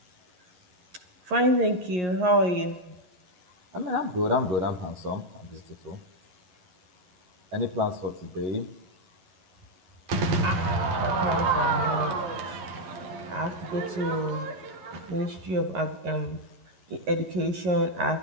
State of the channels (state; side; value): late; left; 11 ms